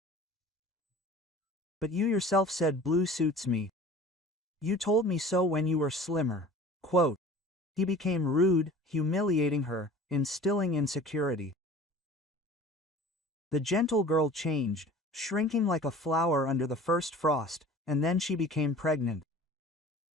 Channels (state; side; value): normal; both; correlation 0.43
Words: But you yourself said blue suits me. You told me so when you were slimmer. Quote. He became rude, humiliating her, instilling insecurity. The gentle girl changed, shrinking like a flower under the first frost, and then she became pregnant.